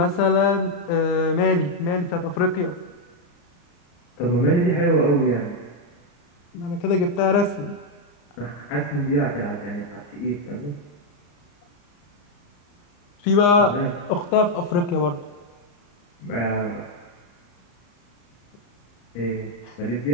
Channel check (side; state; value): right; late; 34 ms